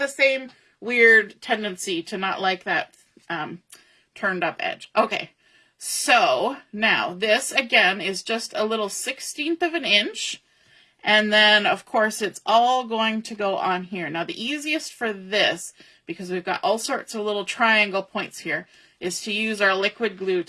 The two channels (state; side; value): identical; both; correlation 1.00